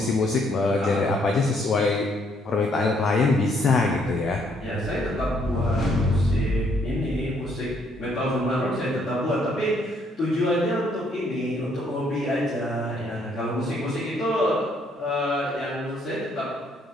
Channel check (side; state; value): both; normal; correlation 0.69